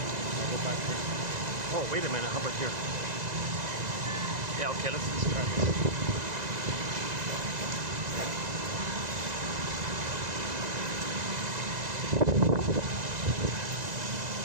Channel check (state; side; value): late; left; 2.0 ms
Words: I'll go back here. Oh, wait a minute. How about here? Yeah, okay. Let's try this.